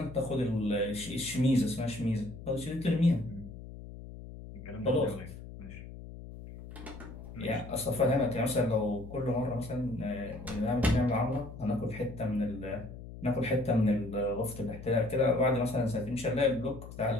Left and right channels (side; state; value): left; noise; hum, 13 dB below the sound